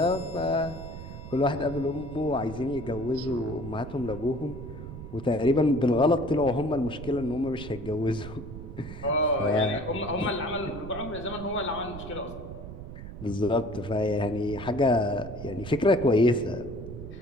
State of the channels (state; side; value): noise; right; rumble, 11 dB below the sound